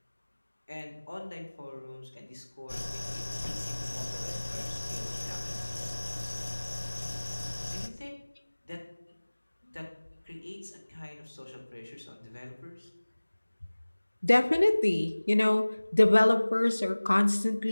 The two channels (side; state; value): both; inverted; correlation -1.00